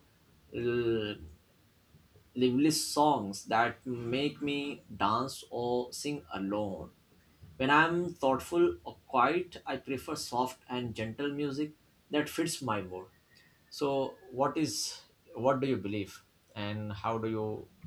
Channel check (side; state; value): both; identical; correlation 1.00